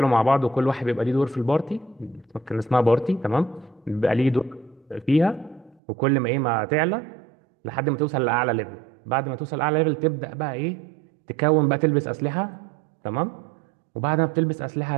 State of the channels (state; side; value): drops out; left; at 5.8 s